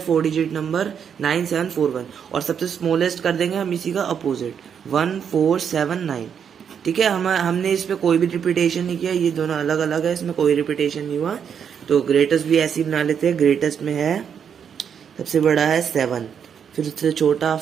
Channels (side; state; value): left; quieter; 7.6 dB